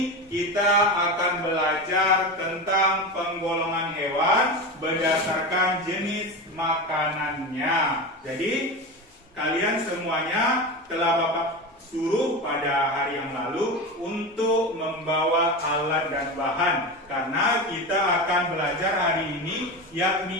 kita akan belajar tentang penggolongan hewan berdasarkan jenis makanannya. Jadi kalian semuanya telah Bapak suruh pada hari yang lalu untuk membawa alat dan bahan, karena kita akan belajar hari ini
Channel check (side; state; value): both; normal; correlation 0.23